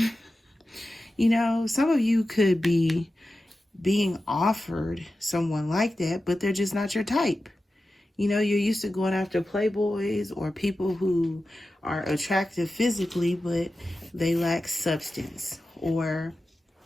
You know, some of you could be being offered someone like that, but they're just not your type. You know, you're used to going after playboys or people who are attractive physically, but they lack substance. Or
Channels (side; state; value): both; normal; correlation 0.93